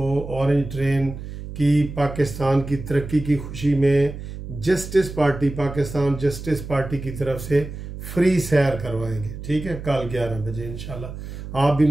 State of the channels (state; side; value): noise; right; hum, 10 dB below the sound